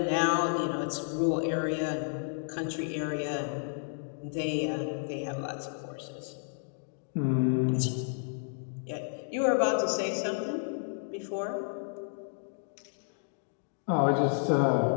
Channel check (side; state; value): right; silent; digital silence